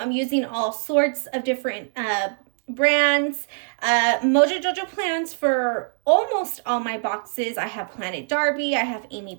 using all sorts of different brands. Mojo Jojo plans for almost all my boxes. I have PlanIt Darbi, I have Amy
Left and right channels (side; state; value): left; silent; digital silence